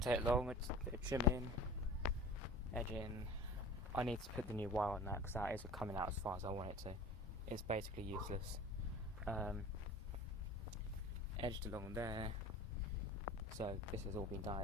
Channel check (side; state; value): both; normal; correlation 0.40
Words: take long. It's a bit of trimming, edging. I need to put the new wire on that because that isn't coming out as far as I want it to. It's basically useless. Edged along there. So this has all been